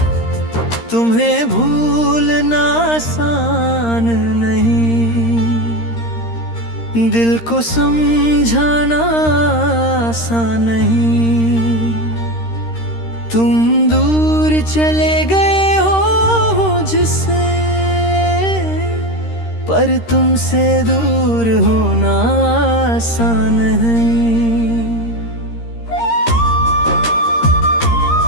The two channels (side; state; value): right; late; 13 ms